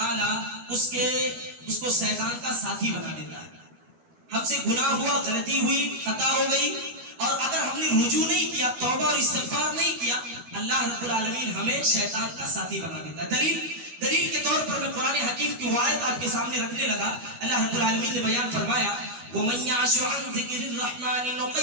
اس کو شیطان کا ساتھی بنا دیتا ہے۔ ہم سے گناہ ہوا، غلطی ہوئی، خطا ہو گئی، اور اگر ہم نے رجوع نہیں کیا، توبہ اور استغفار نہیں کیا، اللہ رب العالمین ہمیں شیطان کا ساتھی بنا دیتا ہے۔ دلیل کے طور پر میں قرآن حکیم کی آیت آپ کے سامنے رکھنے لگا۔ اللہ رب العالمین نے بیان فرمایا وَمَن يَعْشُ عَن ذِكْرِ الرَّحْمَنِ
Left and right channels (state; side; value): late; left; 12 ms